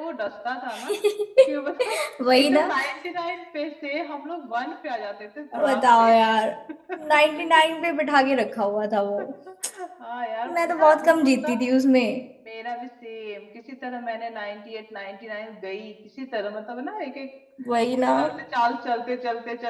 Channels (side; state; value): both; identical; correlation 1.00